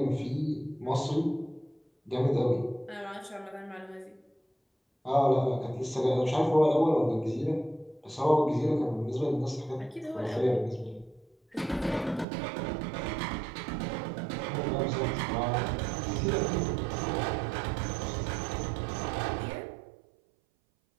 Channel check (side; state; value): left; drops out; at 12.2 s